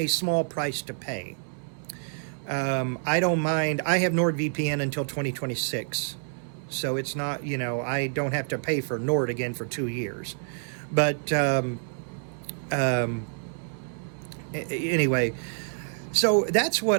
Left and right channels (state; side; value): silent; left; 60 dB below the other